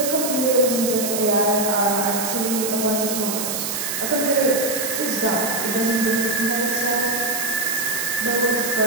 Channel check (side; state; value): right; noise; hiss, 3 dB below the sound